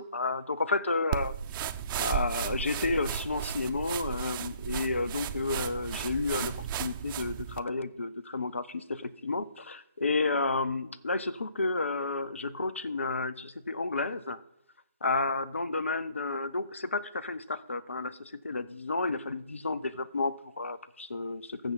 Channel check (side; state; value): both; inverted; correlation -0.62